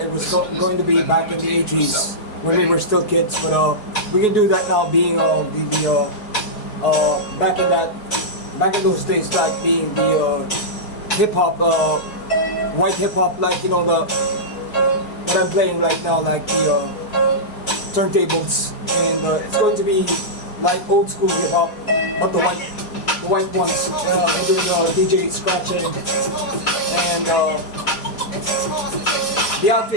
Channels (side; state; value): right; late; 4.7 ms